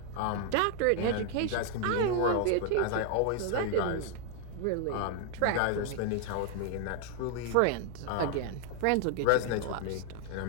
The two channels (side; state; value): both; different; correlation 0.00